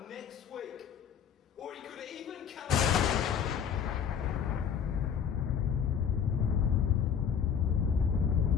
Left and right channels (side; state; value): right; quieter; 7.7 dB